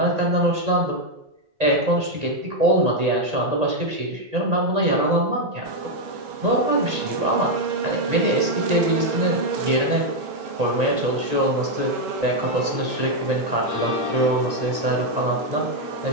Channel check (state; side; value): late; left; 1.8 ms